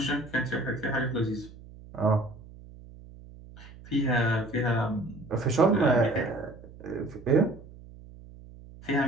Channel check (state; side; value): noise; right; hum, 19 dB below the sound